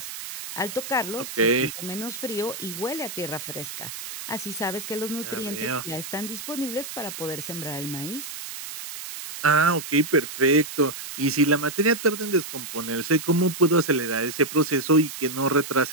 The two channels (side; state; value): right; noise; hiss, 9 dB below the sound